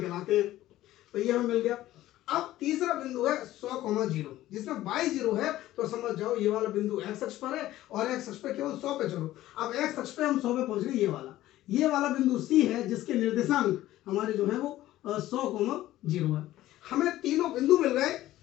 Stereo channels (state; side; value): quieter; right; 14.9 dB